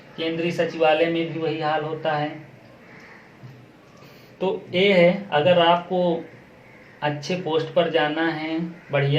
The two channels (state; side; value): identical; both; correlation 1.00